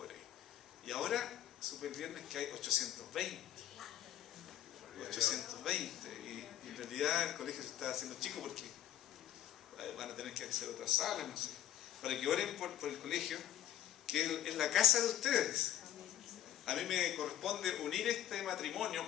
ahí. Y ahora, súper bien, es que hay 820. 820. Y en realidad el colegio se está haciendo chico porque van a tener que hacer otras salas, no sé. Para que oren por el colegio, que es la casa de ustedes. A mí me corresponde unir este matrimonio,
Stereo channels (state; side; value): quieter; right; 11.2 dB